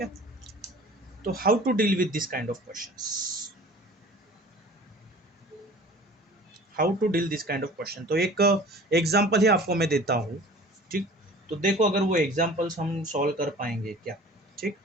है। तो how to deal with this kind of questions, how to deal this kind of question. तो एक एग्जांपल ही आपको मैं देता हूँ, ठीक। तो देखो अगर वो एग्जांपल्स हम सॉल्व कर पाएंगे क्या, ठीक।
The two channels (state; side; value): normal; both; correlation 0.45